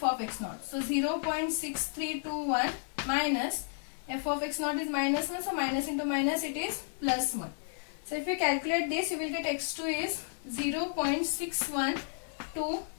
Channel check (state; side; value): silent; right; digital silence